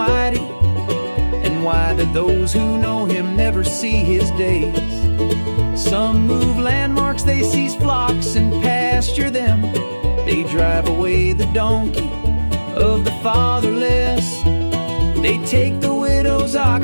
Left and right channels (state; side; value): inverted; both; correlation -1.00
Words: And why do those who know him never see his days? Some move landmarks, they seize flocks and pasture them. They drive away the donkey of the fatherless. They take the widow's